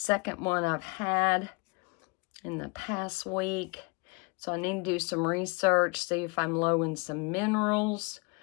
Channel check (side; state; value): right; quieter; 29.0 dB